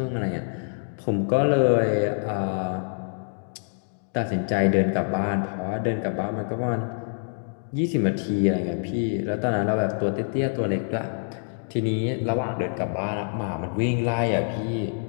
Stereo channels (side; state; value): right; silent; digital silence